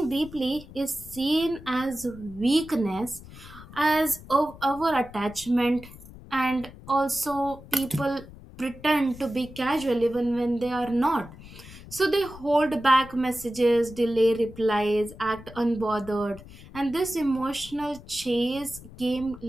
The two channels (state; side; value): noise; left; rumble, 17 dB below the sound